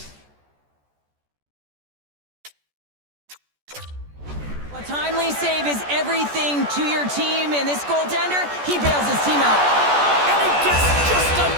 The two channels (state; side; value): late; left; 14 ms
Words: A timely save is everything to your team, and this goaltender, he bails his team out. And he gets just a...